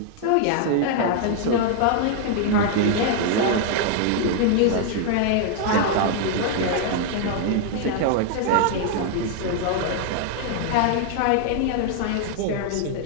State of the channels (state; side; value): different; both; correlation 0.00